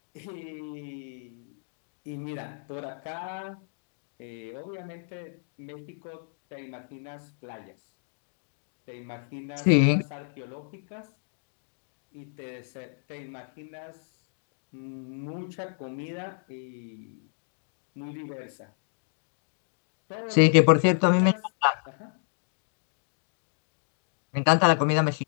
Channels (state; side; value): silent; right; digital silence